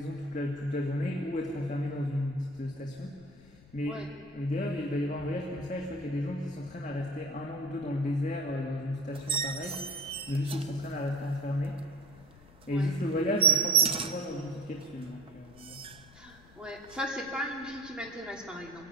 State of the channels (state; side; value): noise; left; rumble, 23 dB below the sound